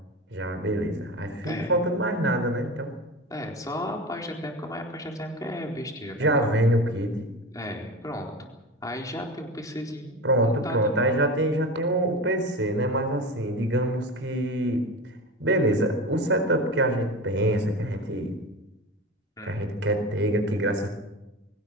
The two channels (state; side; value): normal; both; correlation 0.28